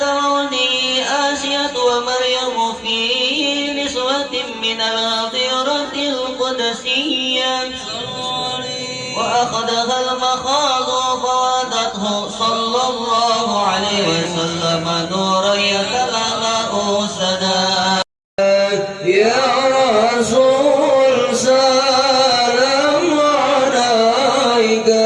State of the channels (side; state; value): both; identical; correlation 1.00